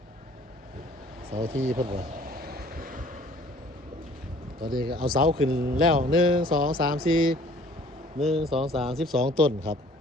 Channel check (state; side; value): normal; both; correlation 0.53